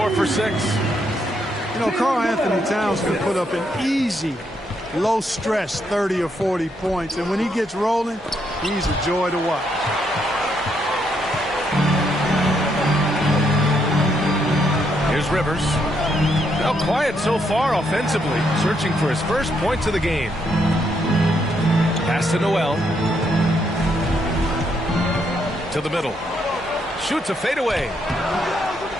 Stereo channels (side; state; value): both; normal; correlation 0.76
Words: for 6. You know, Karl Anthony Towns can put up an easy, low-stress 30 or 40 points. And when he gets rolling, he's a joy to watch. Here's Rivers. Now quiet so far offensively, searching for his first points of the game. Pass to Noel. To the middle. Shoots a fadeaway.